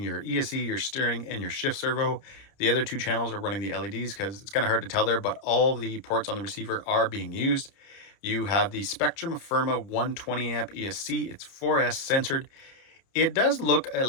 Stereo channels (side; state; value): right; late; 30 ms